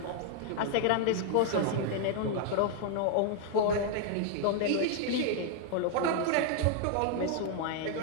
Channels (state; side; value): different; both; correlation 0.00